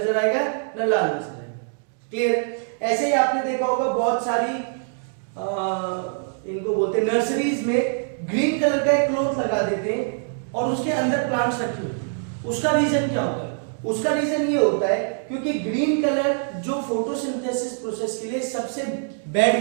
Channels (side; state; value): left; silent; digital silence